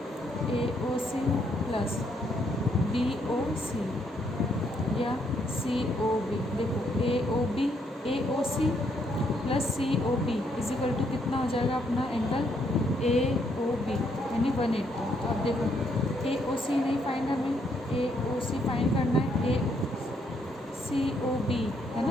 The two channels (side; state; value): both; normal; correlation 0.73